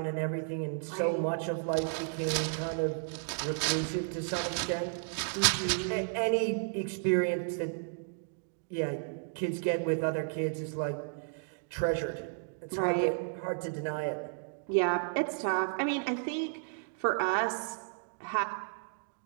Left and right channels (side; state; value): left; silent; digital silence